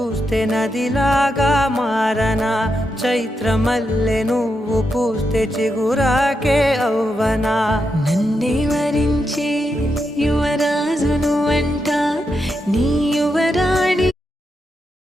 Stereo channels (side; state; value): both; normal; correlation 0.85